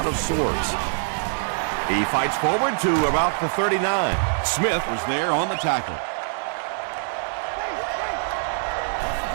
of sorts. He fights forward to about the 39. Smith was there on the tackle.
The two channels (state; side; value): silent; left; digital silence